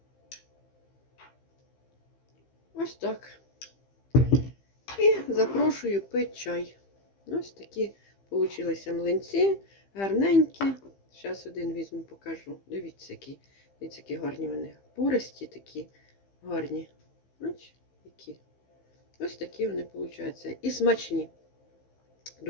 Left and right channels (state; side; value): late; right; 15 ms